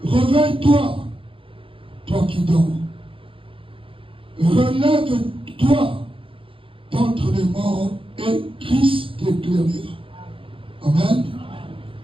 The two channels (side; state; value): left; late; 0.26 ms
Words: réveille-toi, toi qui dors. Relève-toi d'entre les morts et Christ t'éclairera. Amen.